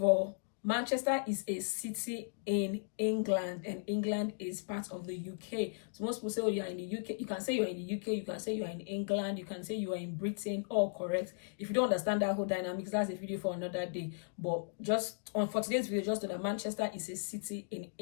all, Manchester is a city in England, and England is part of the UK. So most people say, oh, you're in the UK. You can say you're in the UK, you can say you're in England, you can say you are in Britain, all correct. If you don't understand that whole dynamics, that's a video for another day. But just for today's video, just know that Manchester is a city in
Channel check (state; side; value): silent; right; digital silence